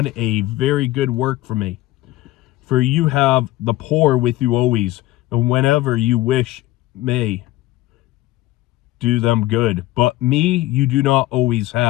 a very good work for me. For you have the poor with you always, and whenever you wish may do them good. But me you do not always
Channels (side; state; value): right; quieter; 17.0 dB